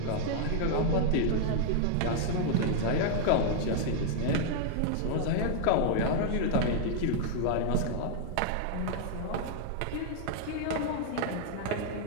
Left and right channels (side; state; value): both; different; correlation -0.01